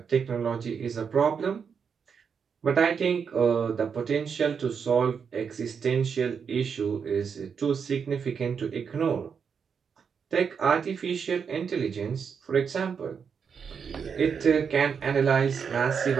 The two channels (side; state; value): left; quieter; 6.5 dB